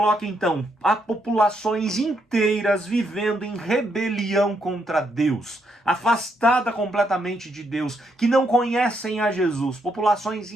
então, há populações inteiras vivendo em rebelião contra Deus, afastada completamente de Deus, que não conhecem a Jesus. Populações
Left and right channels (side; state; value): both; normal; correlation 0.77